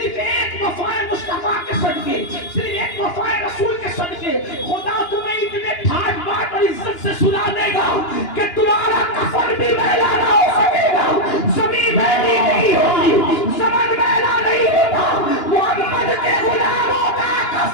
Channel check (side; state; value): right; late; 2.9 ms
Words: ایک وفا مصطفیٰ کے صدقے، صرف ایک وفا رسول کے صدقے خدا تمہیں اتنے ٹھاٹ بات اور عزت سے سنا دے گا کہ تمہارا کفن بھی میلا نہ ہو سکے گا، زمین میلی نہیں ہوگی، زمن میلا نہیں ہوگا، محمد کے غلاموں کا